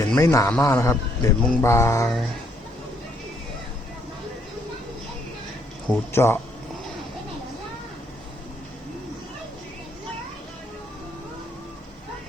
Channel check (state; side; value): normal; both; correlation 0.69